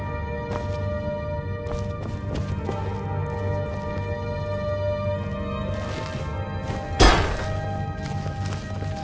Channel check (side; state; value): both; identical; correlation 1.00